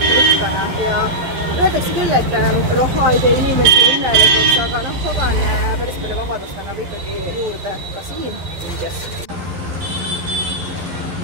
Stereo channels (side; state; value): left; late; 12 ms